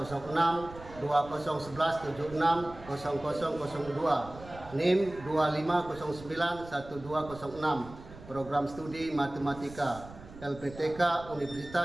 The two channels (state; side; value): noise; right; rumble, 17 dB below the sound